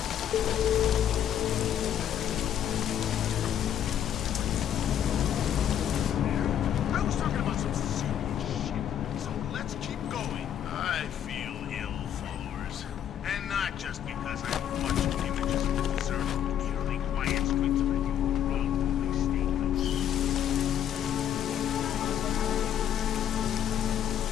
I was talking about some serious shit, so let's keep going. I feel ill, followers. And not just because I'm watching images of the deserted, eerily quiet streets of a new world state.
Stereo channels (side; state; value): right; quieter; 9.9 dB